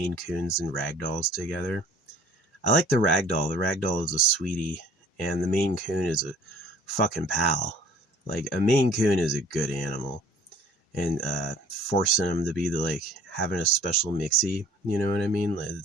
Coons and Ragdolls together. I like the Ragdoll. The Ragdoll is a sweetie, and the Maine Coon is a fucking pal. Like, a Maine Coon is a good animal. and forcing them to be like having a special mixie. You know what I mean?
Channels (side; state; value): both; normal; correlation 0.52